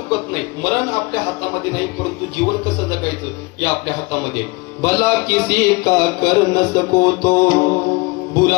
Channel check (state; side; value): quieter; right; 25.5 dB